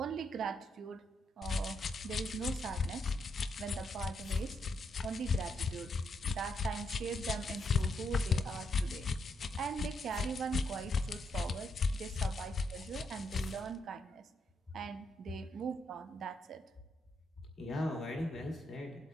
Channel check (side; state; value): both; normal; correlation 0.78